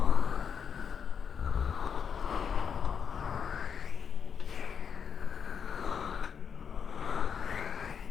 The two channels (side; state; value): right; quieter; 7.0 dB